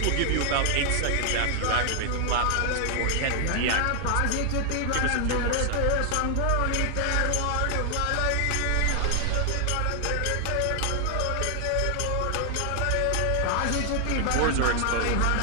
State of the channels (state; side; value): different; both; correlation 0.00